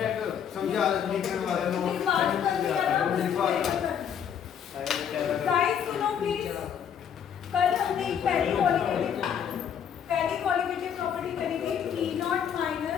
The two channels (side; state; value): right; quieter; 8.4 dB